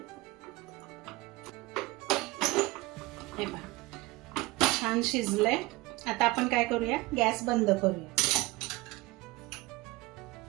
हे पहा छान शिजलंय. आता आपण काय करूया, गॅस बंद करूया.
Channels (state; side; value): quieter; left; 21.3 dB